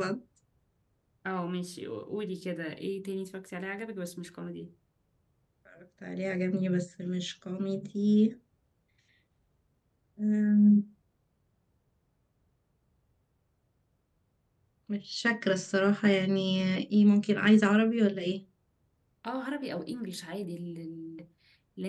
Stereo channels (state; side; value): identical; both; correlation 1.00